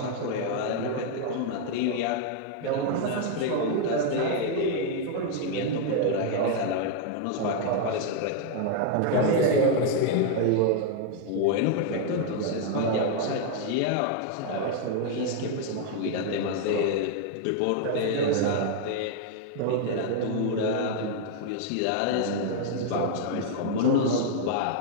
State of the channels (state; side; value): different; both; correlation 0.00